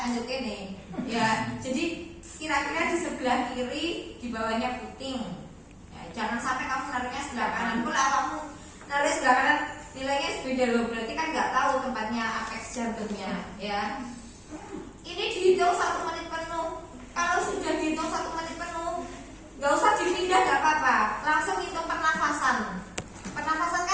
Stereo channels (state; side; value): identical; both; correlation 1.00